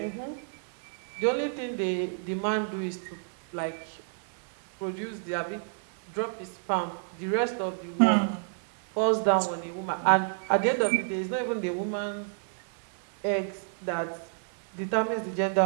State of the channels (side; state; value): left; silent; digital silence